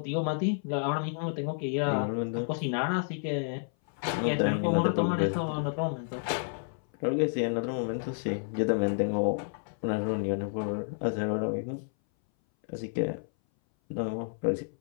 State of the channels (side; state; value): right; silent; 58 dB below the other